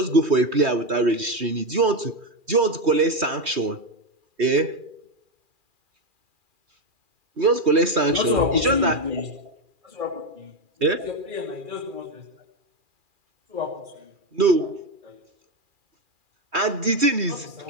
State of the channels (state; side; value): late; left; 2.4 ms